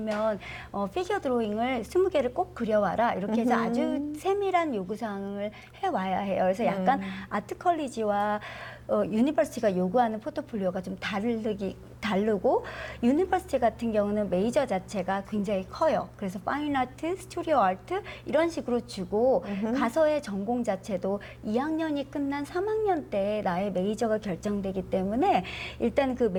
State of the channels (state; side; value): identical; both; correlation 1.00